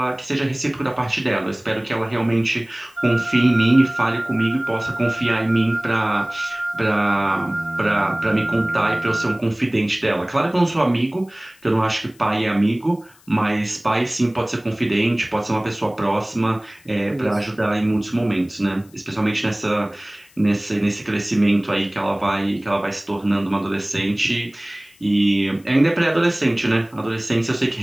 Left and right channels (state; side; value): noise; left; hiss, 29 dB below the sound